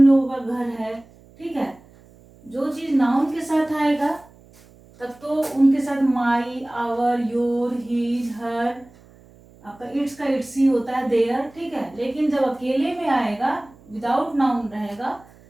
लोगों का घर है, ठीक है। जो चीज नाउन के साथ आएगा तब तो उनके साथ माई, आवर, योर, हिज, हर, आपका इट्स का इट्स ही होता है, देयर, ठीक है। लेकिन जब अकेले में आएगा, विदाउट नाउन रहेगा,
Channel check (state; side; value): noise; right; hum, 26 dB below the sound